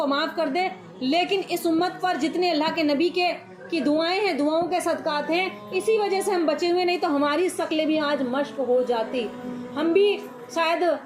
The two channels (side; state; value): both; identical; correlation 1.00